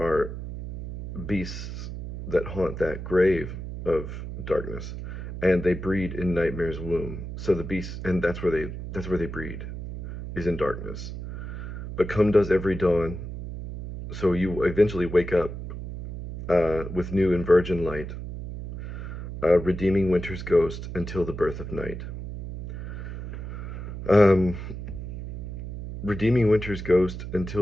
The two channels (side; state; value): right; noise; hum, 8 dB below the sound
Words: beasts that haunt that grave of darkness, and they breed in nightmare's womb. So the beasts, and that's where they breed, is in darkness. But come does every dawn, so you eventually wake up with new and virgin light, redeeming winter's ghost until the birth of night. Um, redeeming winter's ghost